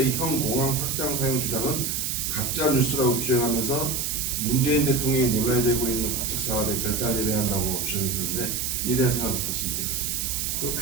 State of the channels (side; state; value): right; noise; hiss, 1 dB below the sound